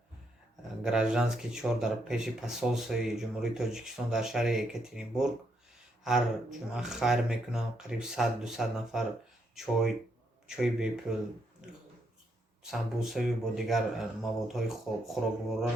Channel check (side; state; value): both; normal; correlation 0.77